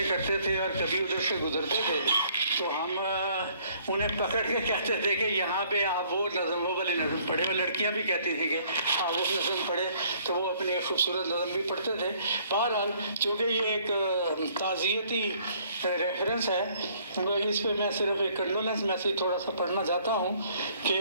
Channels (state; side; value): inverted; both; correlation -0.61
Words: کرتے تھے اور کبھی ادھر سے گزرتے تھے تو ہم انہیں پکڑ کے کہتے تھے کہ یہاں پہ آپ وہ نظم، وہ والی نظم پڑھے۔ وہ لڑکیاں بھی کہتی تھی کہ آپ وہ نظم پڑھے، تو وہ اپنی ایک خوبصورت نظم بھی پڑھتے تھے۔ بہرحال چونکہ یہ ایک تعزیتی ریفرنس ہے، اس پہ میں صرف ایک کنڈولنس میسیج تھوڑا سا پڑھنا چاہتا ہوں